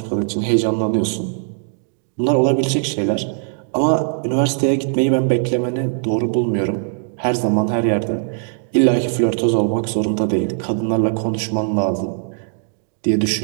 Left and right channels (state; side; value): silent; left; digital silence